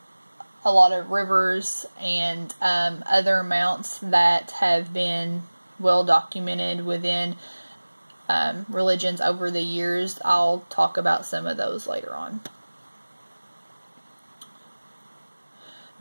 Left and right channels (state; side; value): inverted; both; correlation -1.00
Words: a lot of rivers and other mounts that have been well documented within religions over the years. I'll talk about some of those later on.